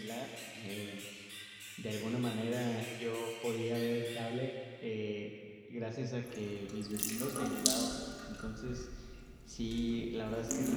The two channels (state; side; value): identical; both; correlation 1.00